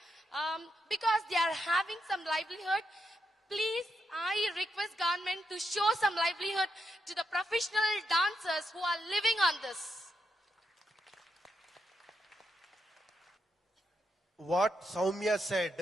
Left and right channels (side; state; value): both; normal; correlation 0.82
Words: because they are having some livelihood. Please, I request government to show some livelihood to the professional dancers who are living on this. What Soumya